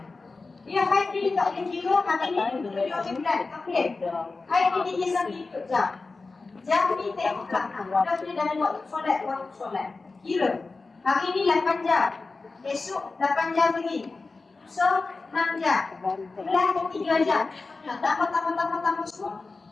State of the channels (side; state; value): right; quieter; 3.8 dB